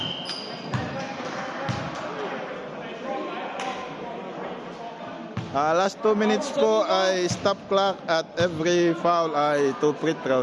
Last 2 minutes po ay stop clock at every foul ay 2 free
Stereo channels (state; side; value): identical; both; correlation 1.00